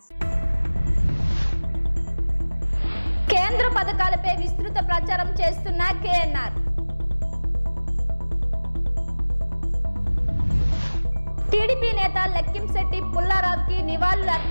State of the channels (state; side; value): inverted; both; correlation -1.00